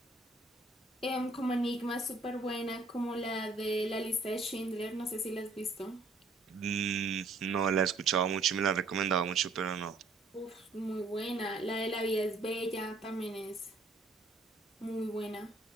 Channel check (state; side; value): quieter; left; 3.5 dB